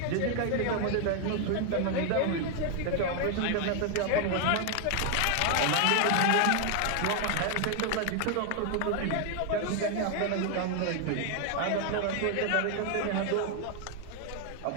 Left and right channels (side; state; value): both; different; correlation 0.00